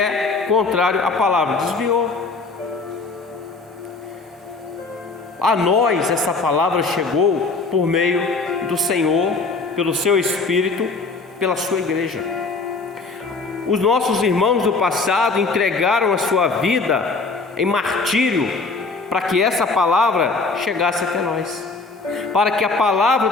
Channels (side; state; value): right; quieter; 3.9 dB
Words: contrário à palavra. Desviou. A nós essa palavra chegou por meio do Senhor, pelo seu Espírito, pela sua igreja. Os nossos irmãos do passado entregaram a sua vida em martírio para que essa palavra chegasse até nós, para que a palavra